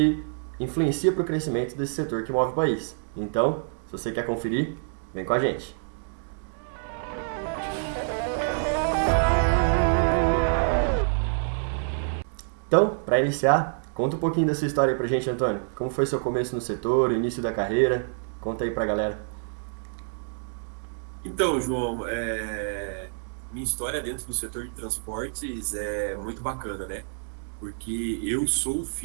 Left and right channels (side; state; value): left; silent; digital silence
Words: influencia para o crescimento desse setor que move o país. Então, se você quer conferir, vem com a gente. Então, para iniciar, conta um pouquinho da sua história aí pra gente, Antônio. Como foi seu começo no setor, o início da carreira? Conta aí pra galera. Então, João, minha história dentro do setor de transportes é muito bacana, né? Porque eu sou